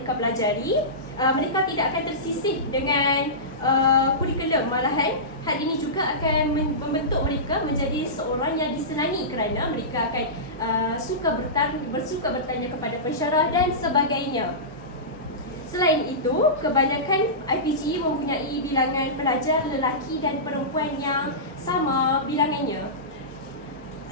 pelajari, mereka tidak akan tersisih dengan kurikulum. Malahan hal ini juga akan membentuk mereka menjadi seorang yang disenangi kerana mereka akan bersuka bertanya kepada pensyarah dan sebagainya. Selain itu, kebanyakan IPG mempunyai bilangan pelajar lelaki dan perempuan yang sama bilangannya.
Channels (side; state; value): both; normal; correlation -0.19